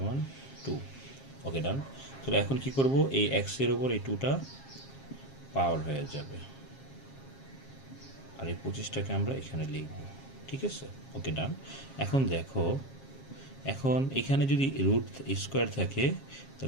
2। ওকে, ডান। তো এখন কি করব, এই এক্সের ওপর এই 2টা পাওয়ার হয়ে যাবে, আর এই 25টাকে আমরা এখানে লিখব। ঠিক আছে, ওকে, ডান। এখন দেখো, এখন এখানে যদি রুট স্কোয়ার থাকে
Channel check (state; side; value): late; right; 7.4 ms